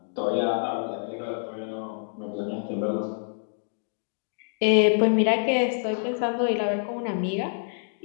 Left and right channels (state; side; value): silent; right; digital silence